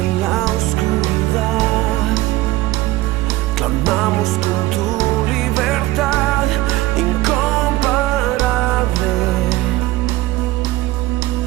la oscuridad, clamamos con tu libertad incomparable.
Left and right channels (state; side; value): quieter; left; 17.6 dB